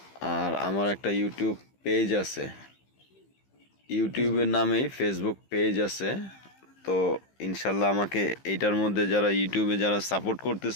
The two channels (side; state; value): right; late; 15 ms